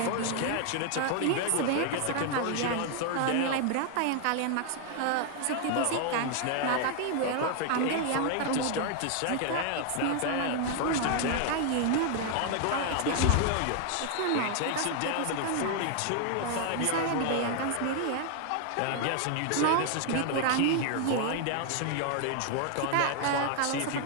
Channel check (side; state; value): both; different; correlation 0.00